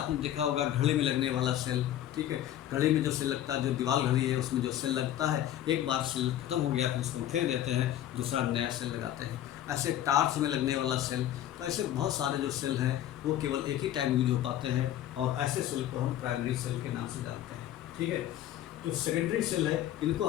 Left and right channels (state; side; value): quieter; right; 12.1 dB